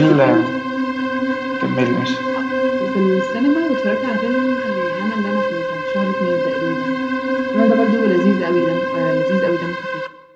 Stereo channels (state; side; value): identical; both; correlation 1.00